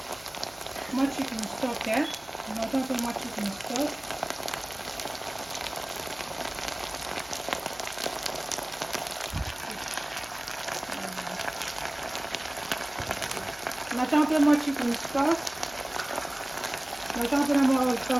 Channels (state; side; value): noise; left; hum, 25 dB below the sound